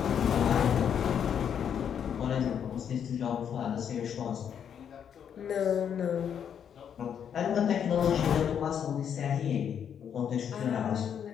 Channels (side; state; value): right; quieter; 8.3 dB